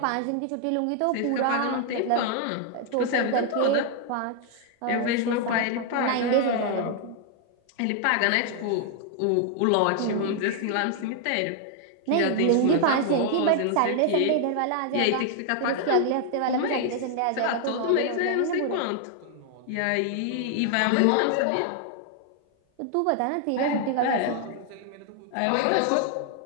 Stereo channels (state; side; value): different; both; correlation 0.00